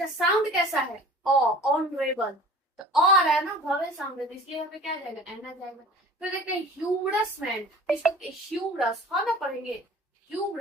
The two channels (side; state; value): both; normal; correlation 0.44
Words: साउंड कैसा है, ऑनरेबल, तो आ रहा है ना, वॉवेल साउंड है, तो इसलिए यहाँ पे क्या आ जाएगा, एन आ जाएगा। फिर देखते हैं ह्यूमरस मैन, इसको ह्यूमरस हा ना पढ़ेंगे,